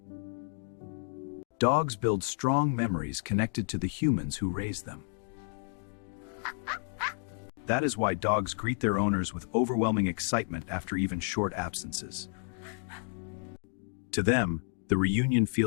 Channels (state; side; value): silent; right; 57 dB below the other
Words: Dogs build strong memories connected to the humans who raised them. That is why dogs greet their owners with overwhelming excitement after even short absences. To them, the reunion